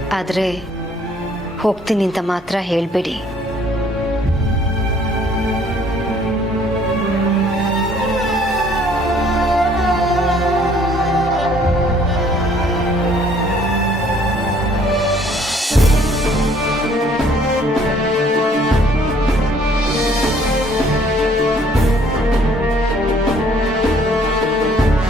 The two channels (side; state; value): both; normal; correlation 0.60